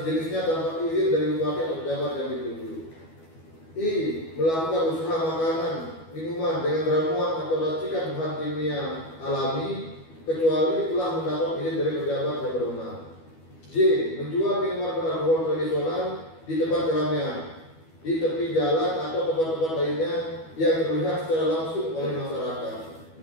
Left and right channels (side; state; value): right; late; 12 ms